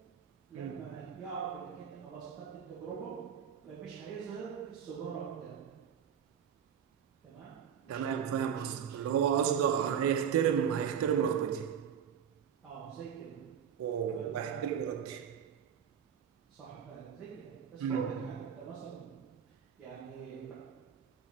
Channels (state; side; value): quieter; left; 8.2 dB